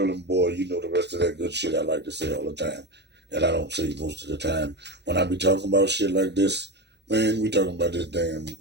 and boy. You know the rest of that good shit I like to say all the time. And I don't say most of the time. When I be talking about shit like this, man, we talking about this damn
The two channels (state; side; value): late; left; 0.50 ms